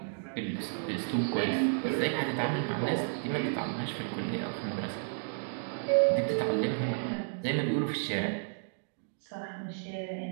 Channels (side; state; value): left; silent; digital silence